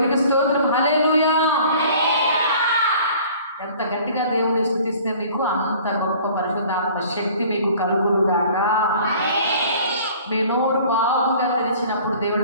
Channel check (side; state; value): both; inverted; correlation -0.50